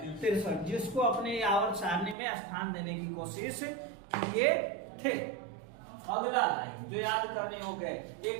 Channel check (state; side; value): drops out; left; at 2.1 s